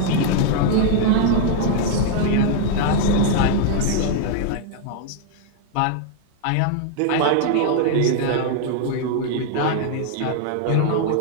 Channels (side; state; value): both; different; correlation 0.00